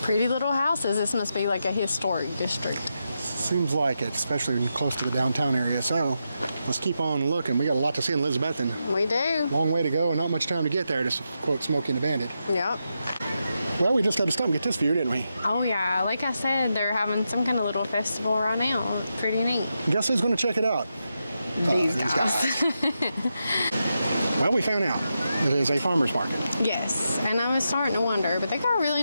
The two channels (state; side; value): inverted; both; correlation -0.86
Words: Pretty little houses. This must be like a historic district. Seems like it, especially close to the downtown area. So let's keep on looking. We got a lot to see in Elizabethton. We do. Long way to go and not much time to get there, to quote Smokey and the Bandit. Yep. Well, we just had to stop and get this view, didn't we? Oh yeah, like I said, they're having some kind of little festival right now. It's pretty neat. Guess who's going to check it out? These guys. Well, we found out it is a farmer's market. Yes, and I was starting to wonder, but they got a really